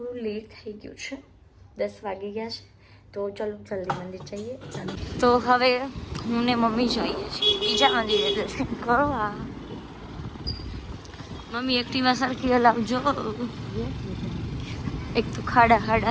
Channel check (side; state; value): both; identical; correlation 1.00